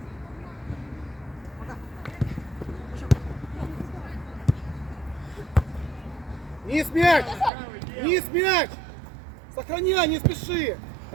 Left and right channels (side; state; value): left; drops out; at 7.5 s